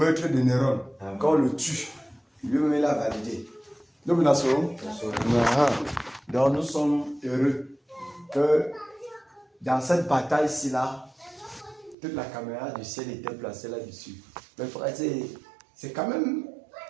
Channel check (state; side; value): drops out; left; at 12.0 s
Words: de Néron. Quand on le tue, lui-même il a validé. Donc nous sommes heureux que dans cette bataille-ci là, toute la caméra du ciel était placée là-dessus. Mais frère, c'est quand même...